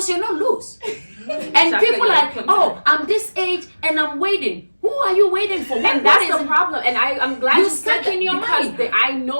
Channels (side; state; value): both; inverted; correlation -1.00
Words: you're not loose. And Exactly, people like, are, oh, I'm this age and I'm waiting. Who are you waiting for? What, and what that's is the it? problem. And I'm glad You you said stuck that in your because mind. I